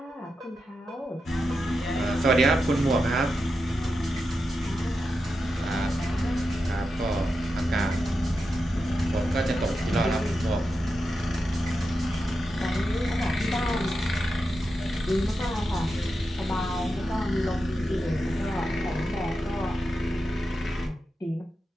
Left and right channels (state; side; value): normal; both; correlation 0.88